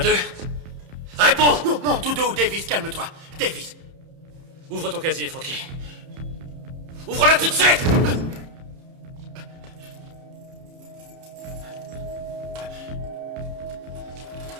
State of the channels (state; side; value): late; left; 31 ms